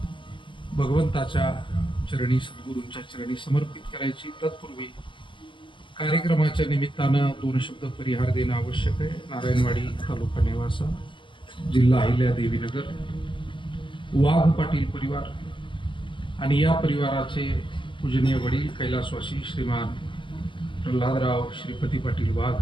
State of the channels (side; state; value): right; late; 0.24 ms